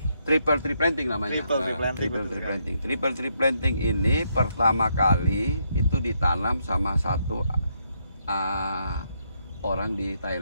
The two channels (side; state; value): both; inverted; correlation -0.76